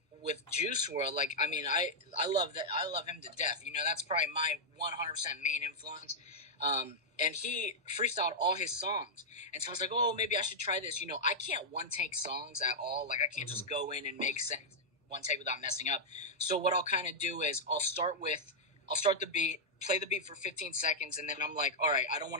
with Juice WRLD. Like, I mean, I love that. I love him to death. You know, that's probably my 100% main influence. And he freestyled all his songs. And so I was like, oh, maybe I should try this. You know, I can't one-take songs at all. Like, I can't just go in and make sense one take without messing up. So what I'll kind of do is I'll start the beat, play the beat for 15 seconds, and then I'm like, all right, I don't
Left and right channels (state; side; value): normal; both; correlation -0.05